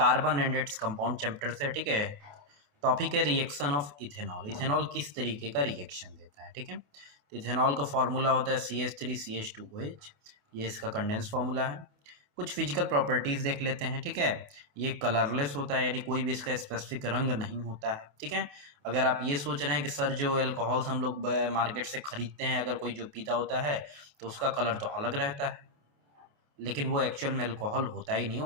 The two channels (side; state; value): left; late; 28 ms